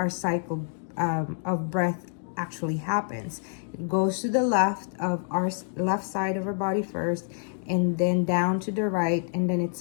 cycle of breath actually happens. It goes to the left of our left side of our body first, and then down to the right, and then it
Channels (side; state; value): right; silent; digital silence